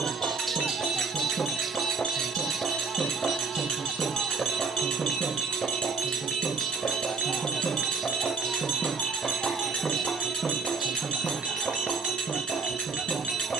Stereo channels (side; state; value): left; quieter; 4.9 dB